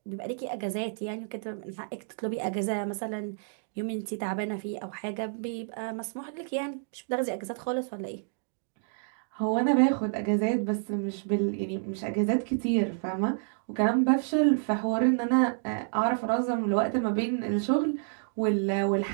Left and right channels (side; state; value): left; silent; digital silence